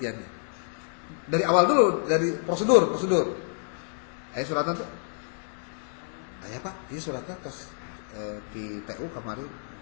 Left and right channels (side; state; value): right; silent; 59 dB below the other